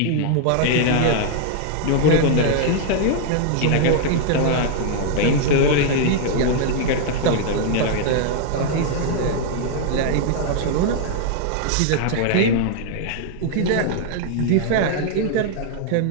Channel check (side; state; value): both; different; correlation 0.00